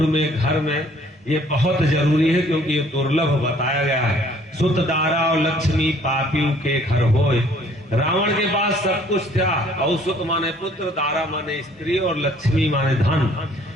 में घर में, ये बहुत जरूरी है क्योंकि ये दुर्लभ बताया गया है। सुत दारा और लक्ष्मी पापियों के घर होए। रावण के पास सब कुछ था, और सुत माने पुत्र, दारा माने स्त्री और लक्ष्मी माने धन।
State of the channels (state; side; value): normal; both; correlation 0.58